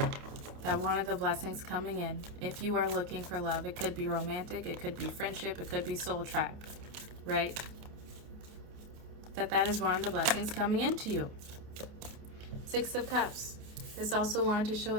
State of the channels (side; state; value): left; late; 28 ms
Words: That one of the blessings coming in, if you are looking for love, it could be romantic, it could be friendship, it could be soul tribe, right? That is one of the blessings coming into you. Six of Cups. This also wanted to show